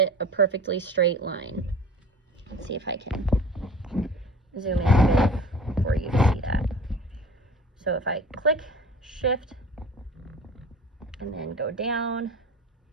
a perfectly straight line. Let's see if I can zoom in a bit for you to see that. So if I click, Shift, and then go down,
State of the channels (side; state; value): both; normal; correlation 0.42